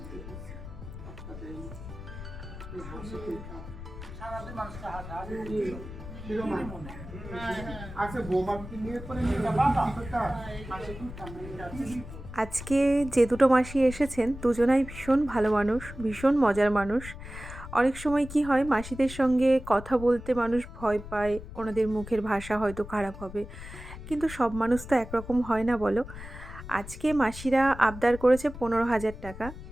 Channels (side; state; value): left; noise; rumble, 12 dB below the sound